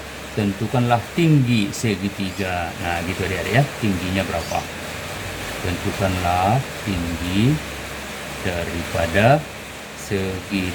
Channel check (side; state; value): both; identical; correlation 1.00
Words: tentukanlah tinggi segitiga. Nah, gitu adik-adik ya, tingginya berapa? Tentukanlah tinggi daripada